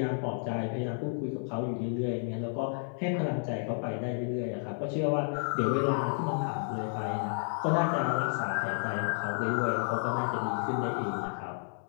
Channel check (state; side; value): silent; right; digital silence